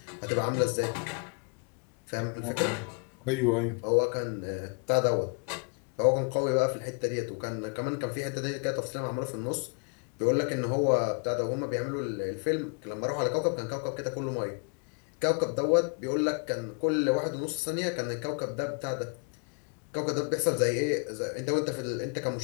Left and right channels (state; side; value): quieter; right; 35.7 dB